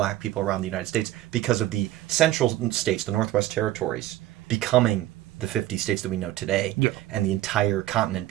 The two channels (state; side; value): quieter; left; 14.6 dB